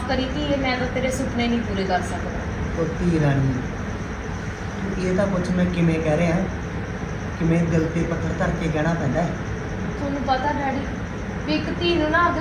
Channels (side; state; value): both; identical; correlation 1.00